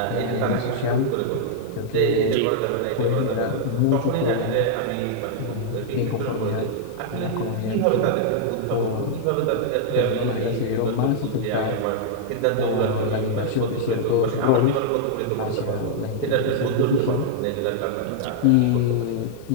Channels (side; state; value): both; different; correlation -0.01